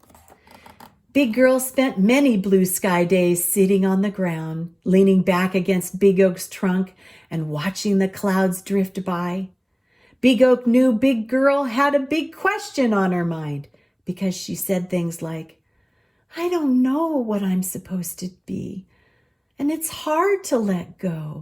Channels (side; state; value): both; identical; correlation 1.00